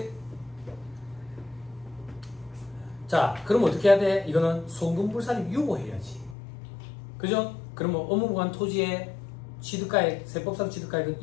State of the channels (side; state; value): right; drops out; at 6.4 s